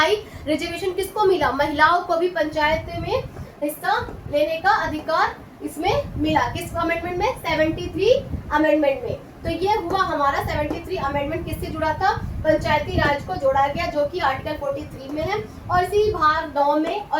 रिजर्वेशन किसको मिला, महिलाओं को भी पंचायत में हिस्सा लेने का अधिकार इसमें मिला। किस अमेंडमेंट में, 73 अमेंडमेंट में। तो ये हुआ हमारा 73 अमेंडमेंट, किससे जुड़ा था, पंचायती राज को जोड़ा गया, जो कि आर्टिकल 43 में है, और इसी भाग 9 में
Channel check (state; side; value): identical; both; correlation 1.00